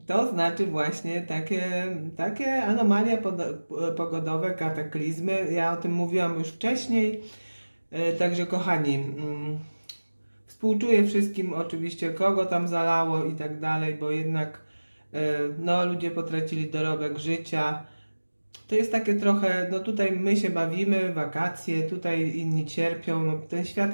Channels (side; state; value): both; inverted; correlation -1.00